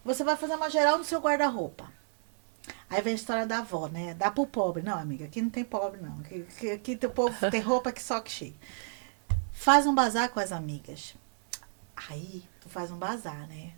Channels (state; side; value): silent; left; 57 dB below the other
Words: Você vai fazer uma geral no seu guarda-roupa. Aí vem a história da avó, né? Dá pro pobre. Não, amiga, aqui não tem pobre, não. Aqui o povo tem roupa que só que cheio. Faz um bazar com as amigas. Aí, tu faz um bazar, né?